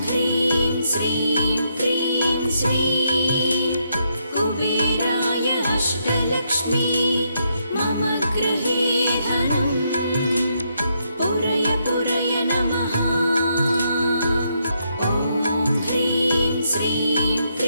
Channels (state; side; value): inverted; both; correlation -0.77